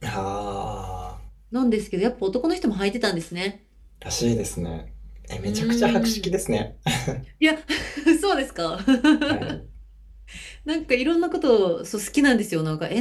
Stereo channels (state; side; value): identical; both; correlation 1.00